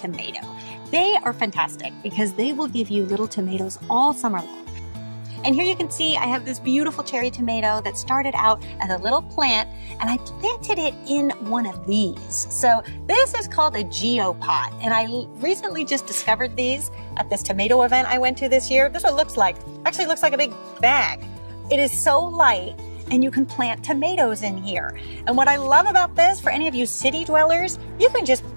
They are fantastic because they will give you little tomatoes all summer long. And here you can see I have this beautiful cherry tomato that started out as a little plant, and I planted it in one of these. So this is called a geopot, and I recently just discovered these at this tomato event I went to this year. This is what it looks like. Actually, it looks like a big bag. It is so light, and you can plant tomatoes in here. And what I love about this, for any of you city dwellers, you can just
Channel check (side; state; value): both; inverted; correlation -1.00